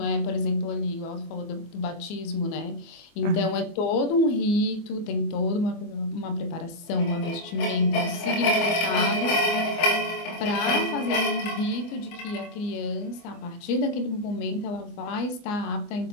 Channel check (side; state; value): right; late; 24 ms